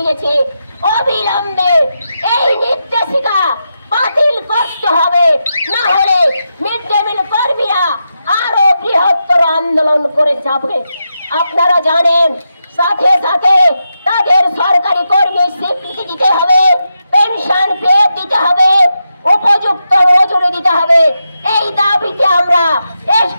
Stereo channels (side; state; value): both; inverted; correlation -0.87